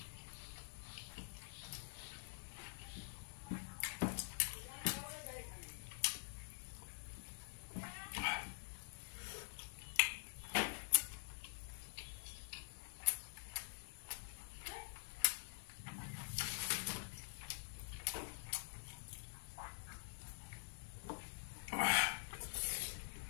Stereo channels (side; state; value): right; silent; digital silence